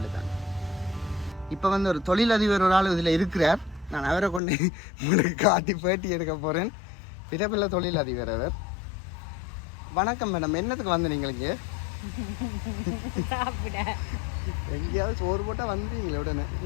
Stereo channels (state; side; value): drops out; right; at 4.4 s